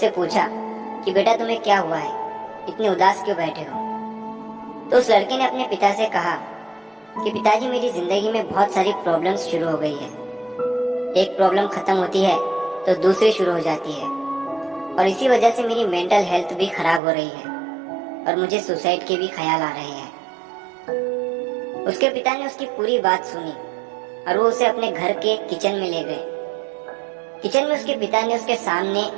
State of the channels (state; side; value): drops out; left; at 17.0 s